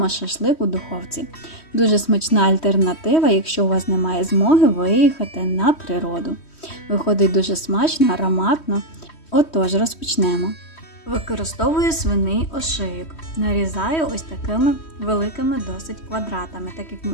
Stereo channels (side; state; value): right; late; 3.1 ms